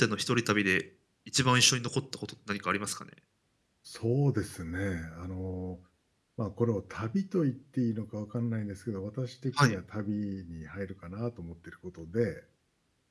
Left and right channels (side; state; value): both; identical; correlation 1.00